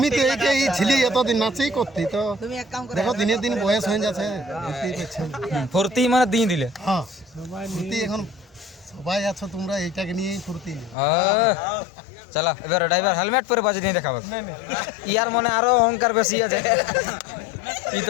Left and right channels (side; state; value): right; drops out; at 11.0 s